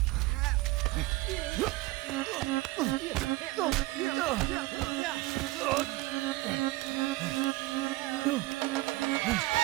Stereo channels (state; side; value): quieter; left; 20.3 dB